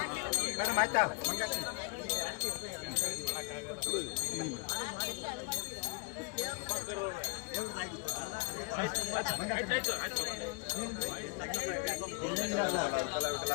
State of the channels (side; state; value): right; quieter; 29.4 dB